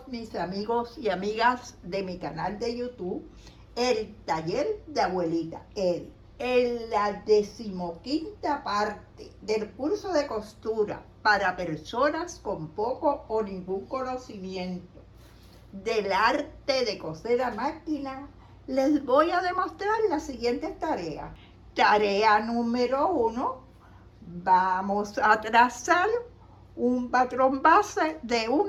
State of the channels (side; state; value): both; identical; correlation 1.00